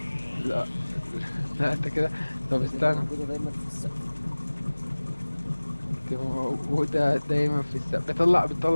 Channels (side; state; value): both; inverted; correlation -1.00